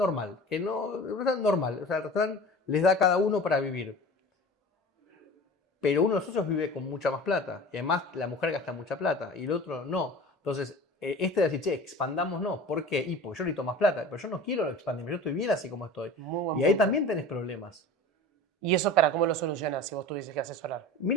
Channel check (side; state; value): both; normal; correlation 0.38